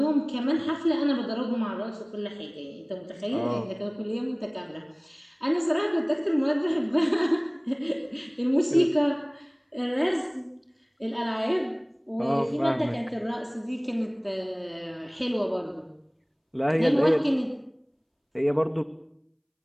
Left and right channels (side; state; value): both; identical; correlation 1.00